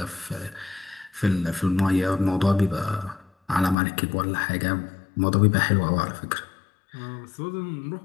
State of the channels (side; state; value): right; drops out; at 3.8 s